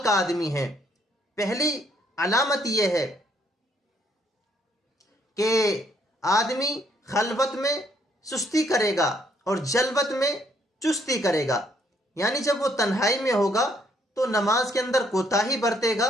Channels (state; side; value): normal; both; correlation 0.68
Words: کا آدمی ہے۔ پہلی علامت یہ ہے کہ آدمی خلوت میں سستی کرے گا اور جلوت میں چستی کرے گا، یعنی جب وہ تنہائی میں ہوگا تو نماز کے اندر کوتاہی برتے گا،